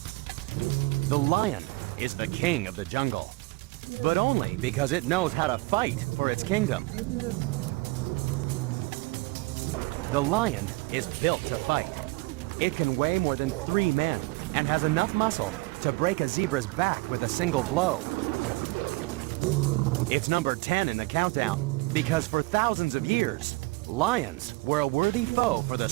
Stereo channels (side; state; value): left; quieter; 24.3 dB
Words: The lion is the king of the jungle, but only because it knows how to fight for its kingdom. The lion is built to fight. It can weigh more than 3 men and has enough muscle to break a zebra's back with a single blow. It's number 10 in the countdown because for thousands of years, lions were a worthy foe for the